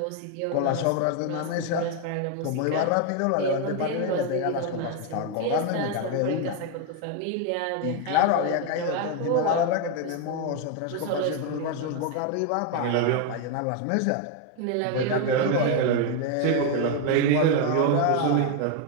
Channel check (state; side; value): different; both; correlation 0.01